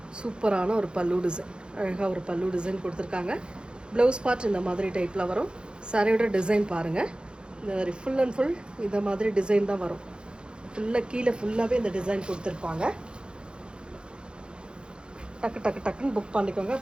சூப்பரான ஒரு பல்லு டிசைன். அழகாக ஒரு பல்லு டிசைன் கொடுத்துருக்காங்க. ப்ளவுஸ் பார்ட் இந்த மாதிரி டைப்பில் வரும். சாரியோட டிசைன் பாருங்கள். இந்த மாதிரி ஃபுல் அண்ட் ஃபுல் இந்த மாதிரி டிசைன் தான் வரும். ஃபுல்லாக கீழே ஃபுல்லாகவே இந்த டிசைன் கொடுத்துருப்பாங்க. டக்கு டக்கு டக்குன்னு புக் பண்ணிக்கோங்க.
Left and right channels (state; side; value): late; left; 0.051 ms